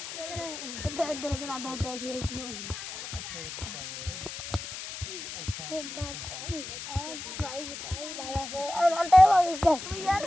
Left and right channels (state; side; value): noise; left; hiss, 9 dB below the sound